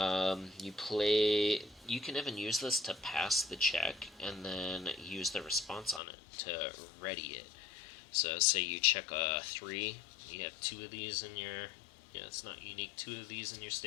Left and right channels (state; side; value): drops out; right; at 6.0 s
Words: You can even use this to pass the check and then use the response on it to ready it. So say you check a 3, you have 2 of these in your, it's not unique, 2 of these in your